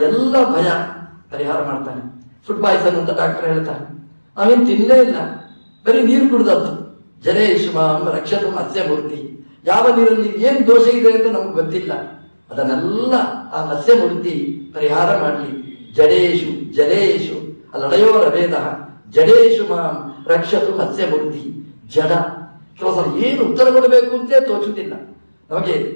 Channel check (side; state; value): both; inverted; correlation -1.00